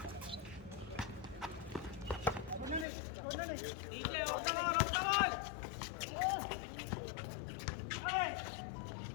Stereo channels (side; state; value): right; drops out; at 2.9 s